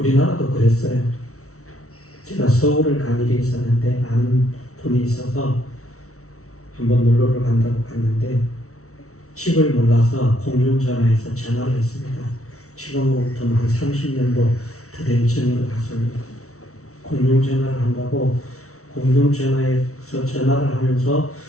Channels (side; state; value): right; late; 0.64 ms